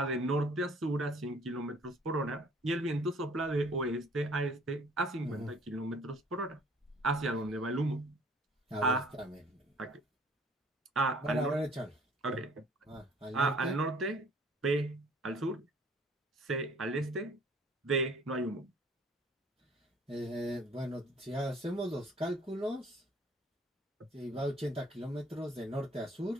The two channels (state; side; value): normal; both; correlation 0.55